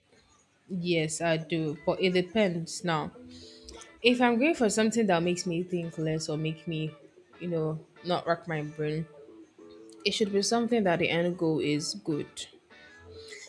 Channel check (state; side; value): identical; both; correlation 1.00